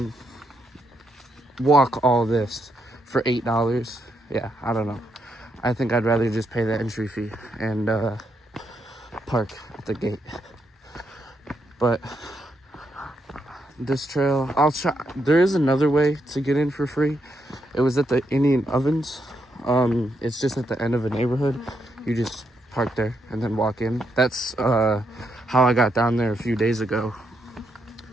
walk all this for $8. Yeah, I don't know. I think I'd rather just pay the entry fee and park at the gate. But this trail, I'll try. There is another way to get in for free. It was at the Indian Ovens. It's just at the end of a neighborhood. You just park there and then walk in. That's how I got down there a few days ago.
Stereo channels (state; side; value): normal; both; correlation 0.80